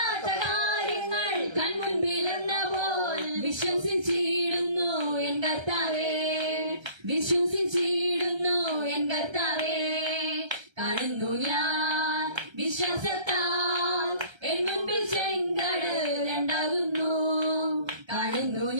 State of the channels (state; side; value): late; left; 1.3 ms